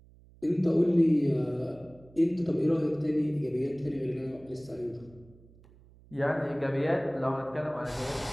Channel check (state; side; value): noise; right; hum, 25 dB below the sound